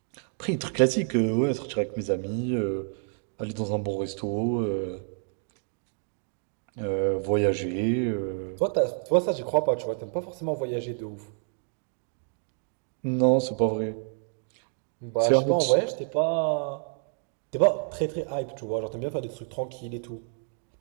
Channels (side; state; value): left; silent; 56 dB below the other